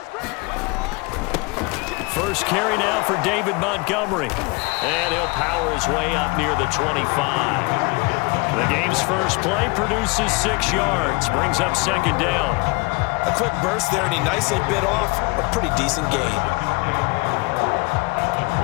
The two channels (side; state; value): right; quieter; 27.3 dB